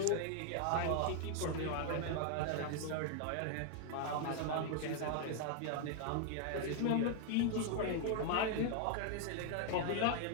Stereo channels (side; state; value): both; different; correlation 0.00